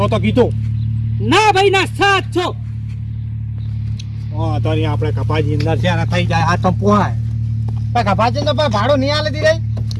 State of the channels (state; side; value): identical; both; correlation 1.00